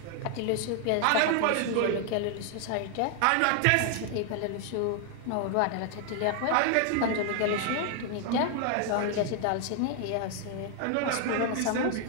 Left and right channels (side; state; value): both; different; correlation 0.00